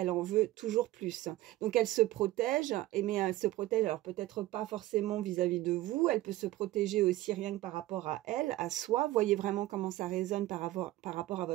en veut toujours plus. Donc, elle se protège, mais elle se protège, alors peut-être pas forcément vis-à-vis de vous, elle peut se protéger aussi rien que par rapport à elle, à soi, voyez vraiment comment ça résonne par rapport à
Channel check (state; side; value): quieter; left; 16.5 dB